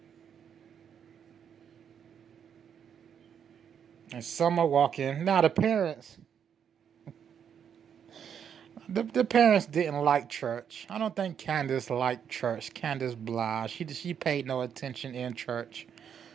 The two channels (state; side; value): quieter; left; 8.1 dB